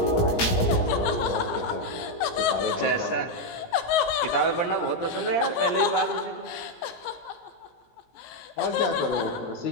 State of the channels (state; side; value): late; right; 17 ms